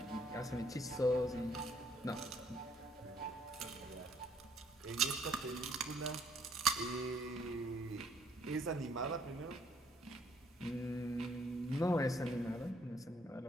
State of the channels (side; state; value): both; normal; correlation 0.66